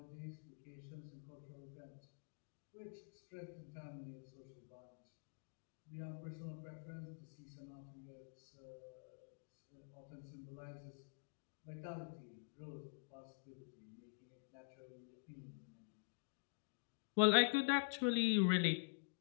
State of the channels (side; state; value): right; silent; digital silence